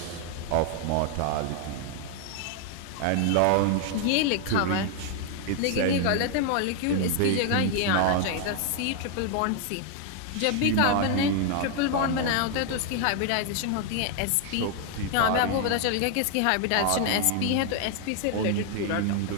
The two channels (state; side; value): different; both; correlation 0.00